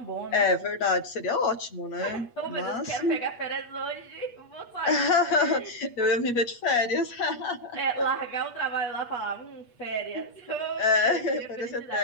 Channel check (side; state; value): right; late; 8.4 ms